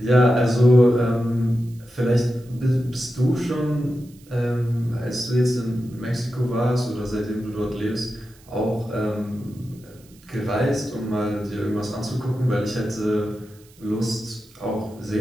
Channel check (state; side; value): noise; right; hiss, 27 dB below the sound